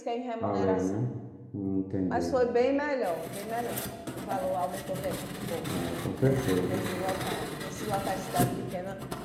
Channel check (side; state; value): both; identical; correlation 1.00